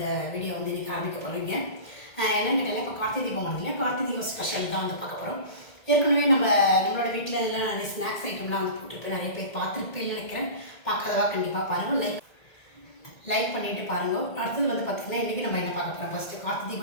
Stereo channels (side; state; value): right; late; 1.8 ms